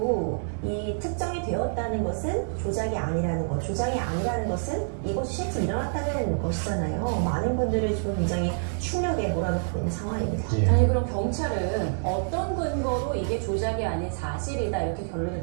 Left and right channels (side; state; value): left; silent; 56 dB below the other